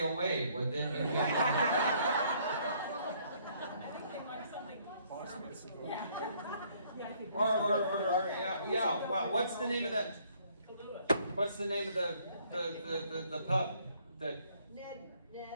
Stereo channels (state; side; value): inverted; both; correlation -0.64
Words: Would then yeah. Well, what's the name of that? What's the name of the pub?